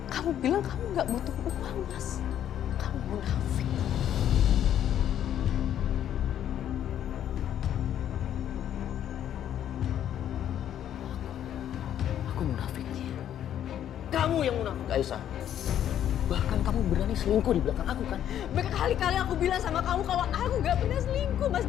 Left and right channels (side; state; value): right; quieter; 10.5 dB